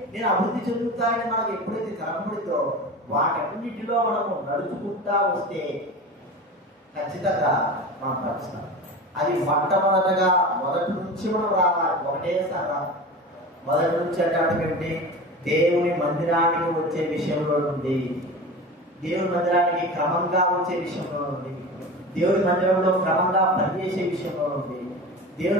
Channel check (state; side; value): normal; both; correlation 0.31